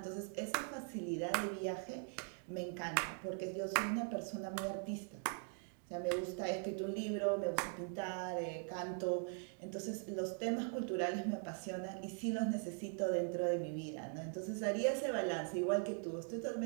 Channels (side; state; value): left; silent; 50 dB below the other